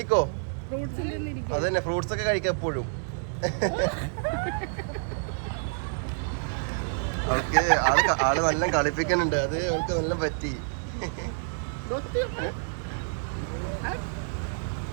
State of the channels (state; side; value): silent; left; digital silence